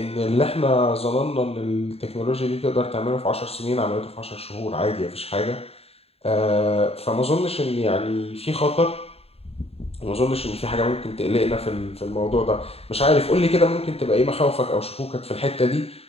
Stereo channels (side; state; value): right; late; 0.29 ms